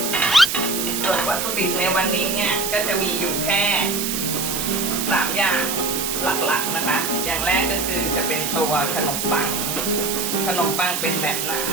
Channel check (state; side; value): noise; right; hiss, 2 dB below the sound